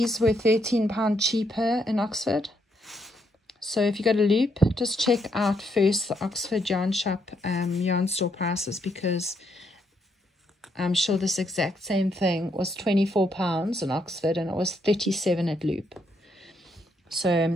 were £13 cheaper in Oxford. So if you go to Loop, just check out first the Oxford yarn shop yarn store prices, because I'm sure this exact same thing was £24 in Oxford and it was £37 at Loop.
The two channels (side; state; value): both; normal; correlation 0.76